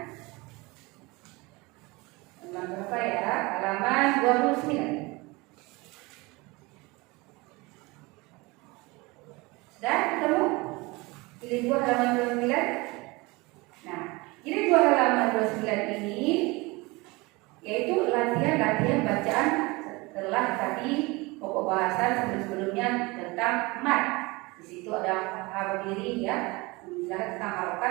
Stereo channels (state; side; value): quieter; left; 24.2 dB